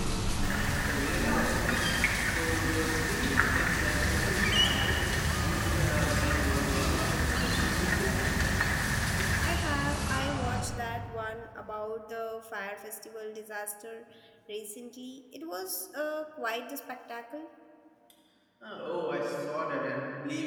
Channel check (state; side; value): identical; both; correlation 1.00